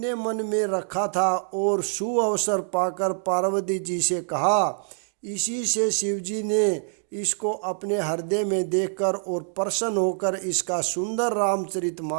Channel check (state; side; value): silent; left; 57 dB below the other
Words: मन में रखा था और सुअवसर पाकर पार्वती जी से कहा। इसी से शिवजी ने इसको अपने हृदय में देखकर और प्रसन्न होकर इसका सुंदर